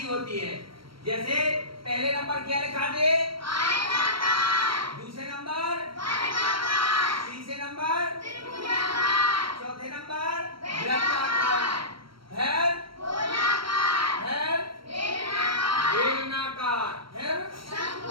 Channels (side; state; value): left; late; 0.74 ms